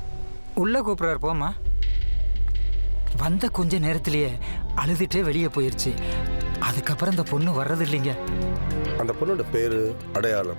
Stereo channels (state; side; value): inverted; both; correlation -1.00